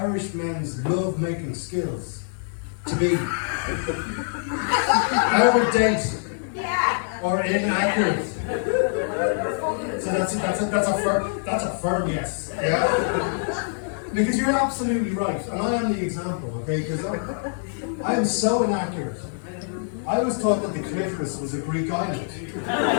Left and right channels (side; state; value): right; silent; digital silence